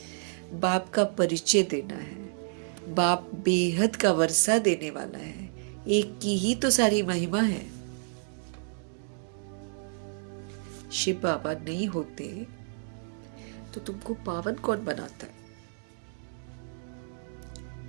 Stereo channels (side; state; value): left; silent; digital silence